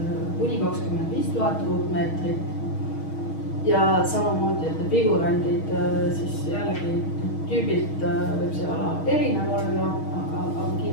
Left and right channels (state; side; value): late; right; 6.4 ms